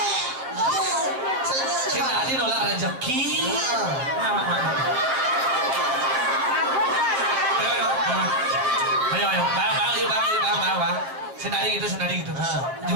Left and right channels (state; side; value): late; left; 7.7 ms